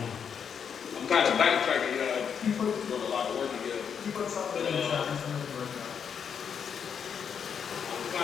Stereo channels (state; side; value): quieter; right; 7.3 dB